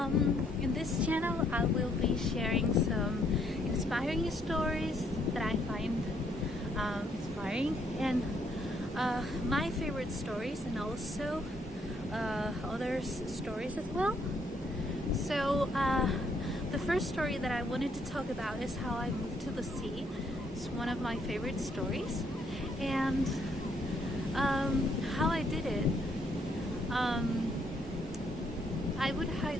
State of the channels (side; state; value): both; normal; correlation 0.71